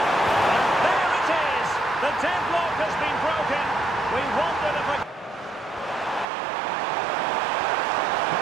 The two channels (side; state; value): left; drops out; at 6.2 s